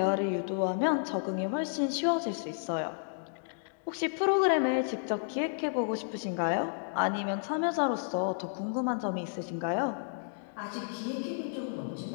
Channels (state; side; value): silent; right; digital silence